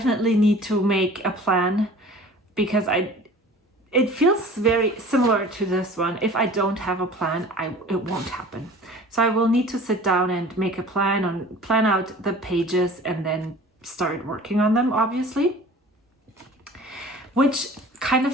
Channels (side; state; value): both; normal; correlation 0.44